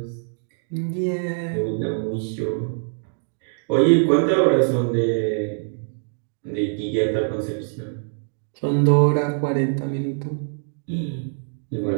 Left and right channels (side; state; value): left; silent; digital silence